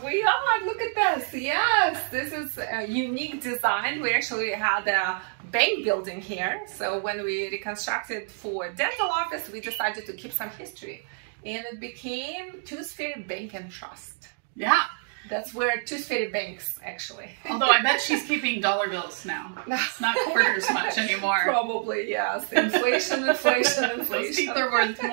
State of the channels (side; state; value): left; silent; 60 dB below the other